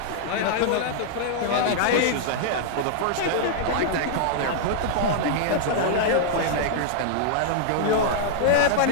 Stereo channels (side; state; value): both; different; correlation -0.01